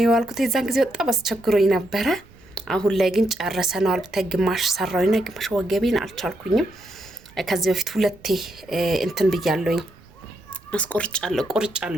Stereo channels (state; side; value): noise; right; rumble, 26 dB below the sound